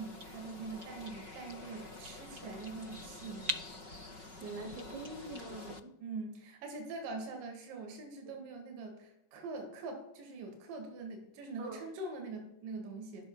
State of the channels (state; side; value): late; left; 5.4 ms